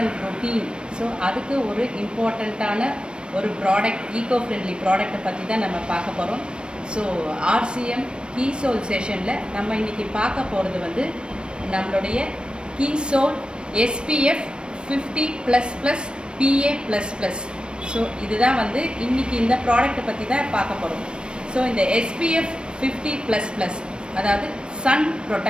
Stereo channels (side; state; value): left; late; 0.055 ms